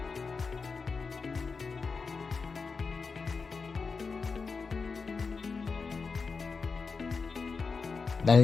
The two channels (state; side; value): quieter; right; 4.8 dB